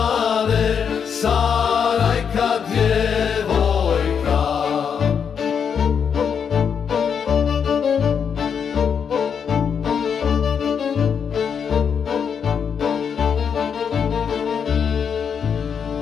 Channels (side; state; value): right; quieter; 7.1 dB